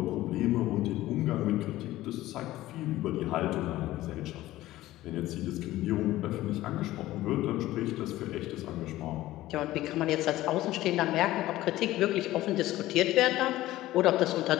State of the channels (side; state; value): right; quieter; 16.0 dB